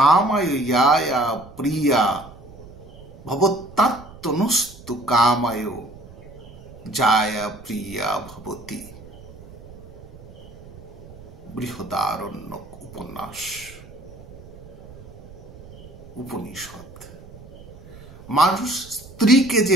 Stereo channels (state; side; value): noise; right; rumble, 18 dB below the sound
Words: ইয়ায়া প্রিয়া ভবত্তাত্মনস্তু কামায় জায়া প্রিয়া ভবতি। বৃহদারণ্যক উপনিষদ। মানুষ স্ত্রীকে